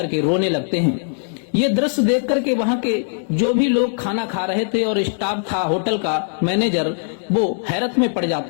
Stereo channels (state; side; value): silent; right; digital silence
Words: रोने लगते हैं। ये दृश्य देख करके वहाँ के जो भी लोग खाना खा रहे थे और स्टाफ था होटल का मैनेजर, वो हैरत में पड़